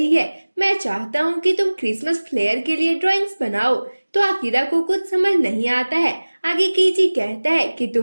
है, मैं चाहता हूँ कि तुम क्रिसमस फ्लेयर के लिए ड्राइंग्स बनाओ। तो अकीरा को कुछ समझ नहीं आता है। आगे केजी कहता है कि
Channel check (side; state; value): both; inverted; correlation -1.00